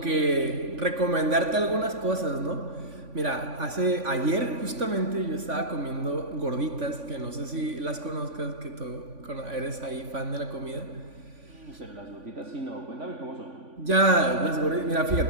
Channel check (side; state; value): left; late; 3.5 ms